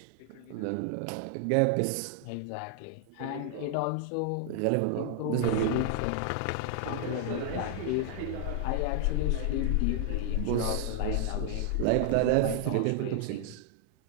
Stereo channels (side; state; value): both; different; correlation 0.00